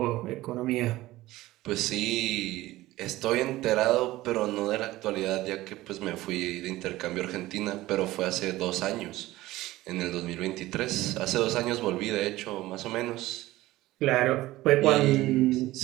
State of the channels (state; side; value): quieter; left; 17.2 dB